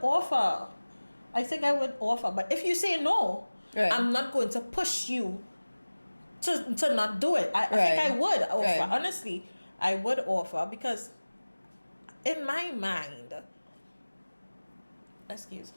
offer. But if you say no, I'm not going to push you to not do it. I think I would offer. Honestly, I would offer because in my mind, I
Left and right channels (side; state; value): both; inverted; correlation -1.00